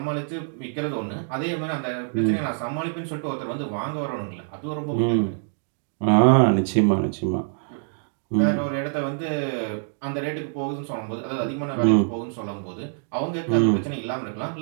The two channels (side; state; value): left; silent; digital silence